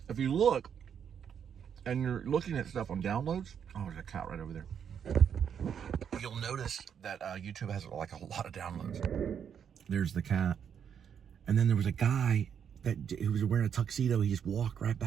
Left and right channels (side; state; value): left; quieter; 8.0 dB